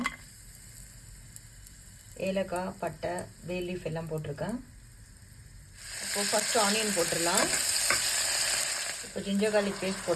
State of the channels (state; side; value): identical; both; correlation 1.00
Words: ஏலக்காய், பட்டை, பே லீஃப் எல்லாம் போட்டிருக்கேன். இப்போது ஃபஸ்ட்டு ஆனியன் போட்டுடலாம். இப்போ ஜிஞ்சர் கார்லிக் பேஸ்ட்